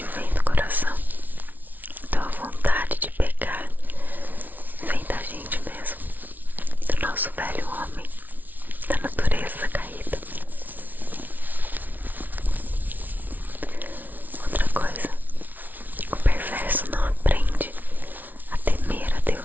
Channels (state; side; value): late; left; 0.081 ms